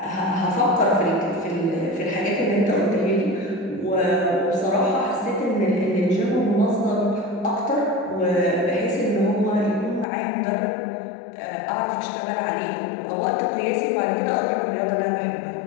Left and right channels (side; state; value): right; drops out; at 10.1 s